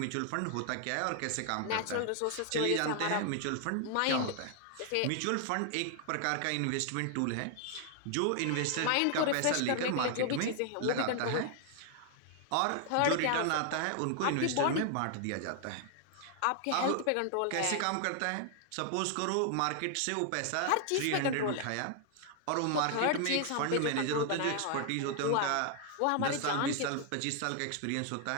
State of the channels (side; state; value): both; different; correlation 0.00